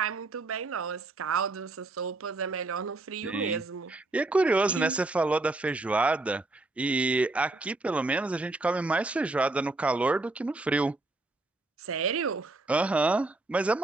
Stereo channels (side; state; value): left; quieter; 3.0 dB